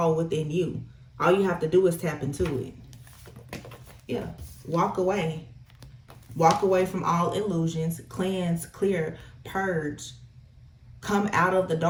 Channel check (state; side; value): identical; both; correlation 1.00